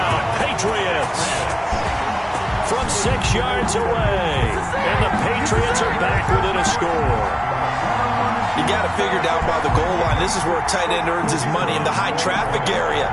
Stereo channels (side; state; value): both; identical; correlation 1.00